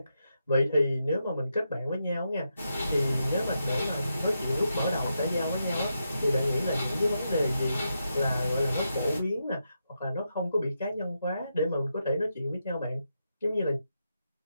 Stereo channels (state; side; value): inverted; both; correlation -0.85